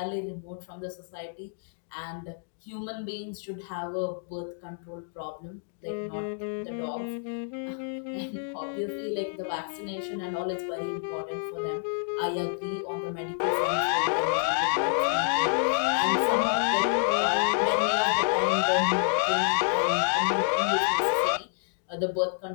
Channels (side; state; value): right; silent; digital silence